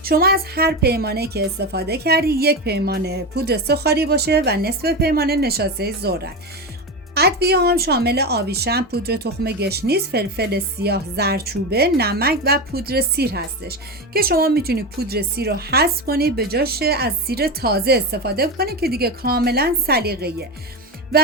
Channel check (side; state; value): both; normal; correlation 0.18